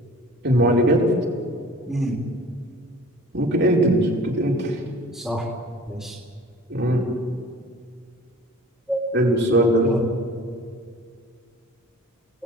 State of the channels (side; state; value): both; normal; correlation 0.45